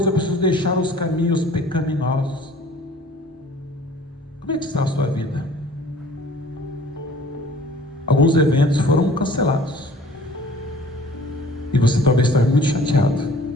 eu preciso deixar os caminhos pecaminosos. Como é que está a sua vida? Alguns eventos foram cancelados. E você talvez esteja muito chateado.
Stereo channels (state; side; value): normal; both; correlation 0.50